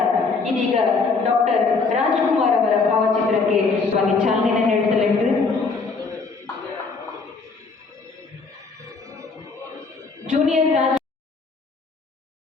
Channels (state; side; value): quieter; right; 4.4 dB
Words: ಇದೀಗ ಡಾಕ್ಟರ್ ರಾಜ್ಕುಮಾರ್ ಅವರ ಭಾವಚಿತ್ರಕ್ಕೆ ಚಾಲನೆ ನೀಡಲಿದ್ದು ಜೂನಿಯರ್ ರಾಜ್